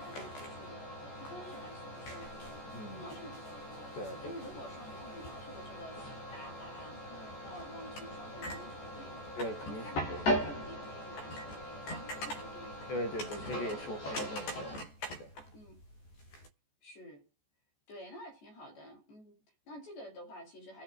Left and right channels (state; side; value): late; right; 14 ms